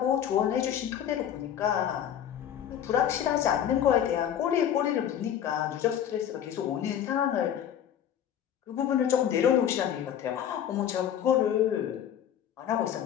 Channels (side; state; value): right; quieter; 9.8 dB